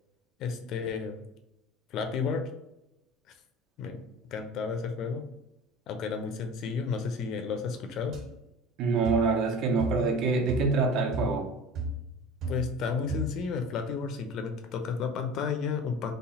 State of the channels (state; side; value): normal; both; correlation 0.37